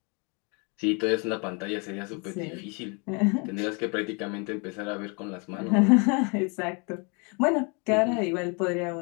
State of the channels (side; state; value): right; quieter; 33.1 dB